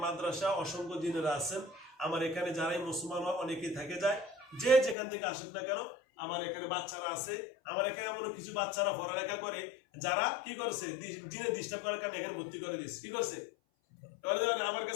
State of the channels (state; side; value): drops out; right; at 5.0 s